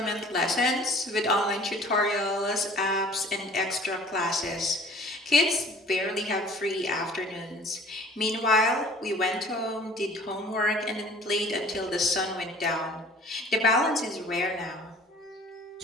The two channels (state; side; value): normal; both; correlation 0.49